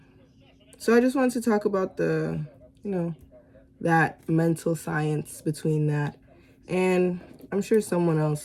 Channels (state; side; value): identical; both; correlation 1.00